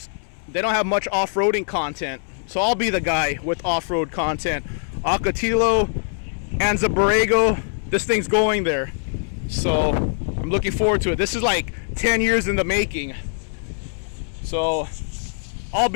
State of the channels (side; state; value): right; silent; 64 dB below the other